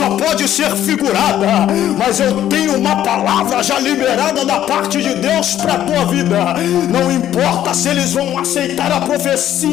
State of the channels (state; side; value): quieter; right; 11.6 dB